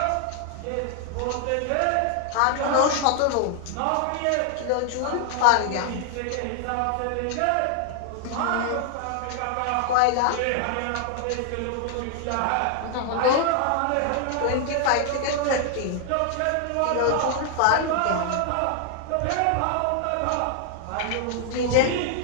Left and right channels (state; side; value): different; both; correlation 0.00